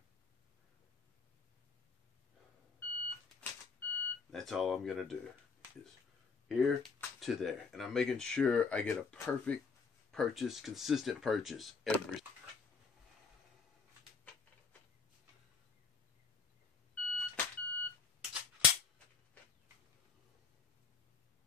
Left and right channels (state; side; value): quieter; right; 5.3 dB